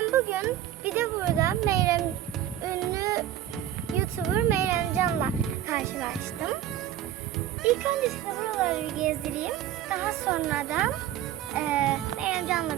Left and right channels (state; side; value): quieter; left; 11.7 dB